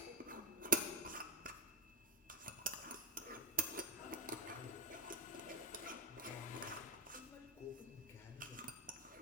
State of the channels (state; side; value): normal; both; correlation 0.06